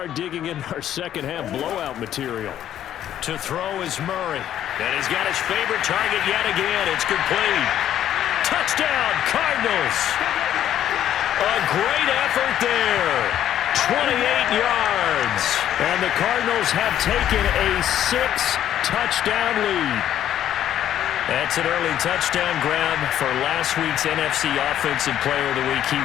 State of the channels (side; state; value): right; quieter; 11.2 dB